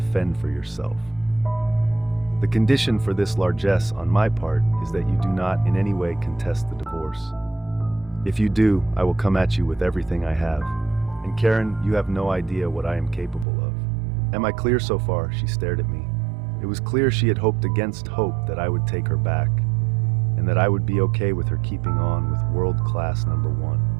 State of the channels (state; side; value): drops out; left; at 13.5 s